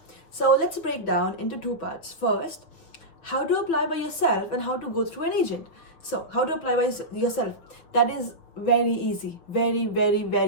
So let's break down into two parts. First, how to apply by yourself and how to go through an agent. So how to apply by yourself, that is very easy, very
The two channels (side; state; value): right; late; 6.4 ms